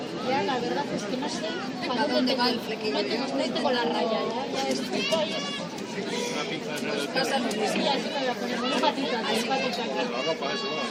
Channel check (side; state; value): both; identical; correlation 1.00